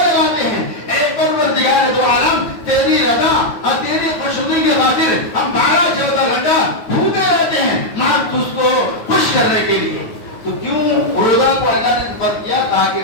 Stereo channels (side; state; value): right; late; 9.3 ms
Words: ہیں. اے پروردگار دو عالم، تیری رضا اور تیری خوشنودی کی خاطر ہم 12-14 گھنٹہ بھوکے رہتے ہیں ماں تجھ کو خوش کرنے کے لیے. تو کیوں روزہ کو اللہ نے فرض کیا؟ تاکہ